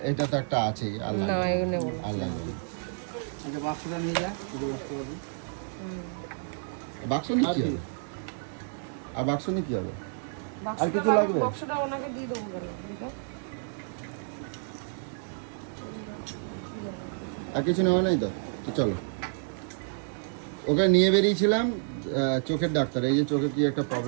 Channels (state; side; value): silent; left; digital silence